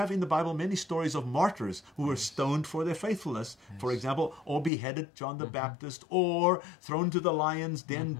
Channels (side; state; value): right; drops out; at 4.7 s